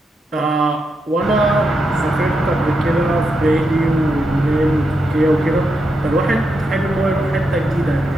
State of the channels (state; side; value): normal; both; correlation 0.84